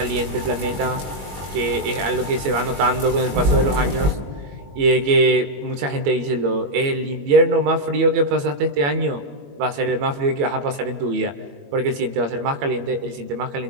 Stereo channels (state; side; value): late; left; 21 ms